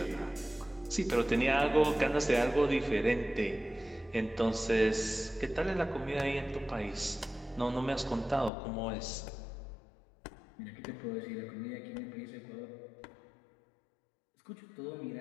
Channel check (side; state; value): right; drops out; at 8.5 s